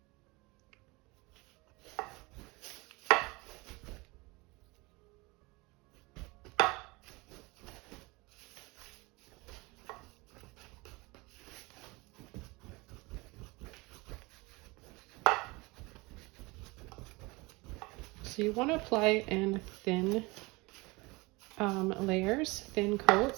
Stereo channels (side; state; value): left; quieter; 24.5 dB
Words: So you want to apply it in thin layers, thin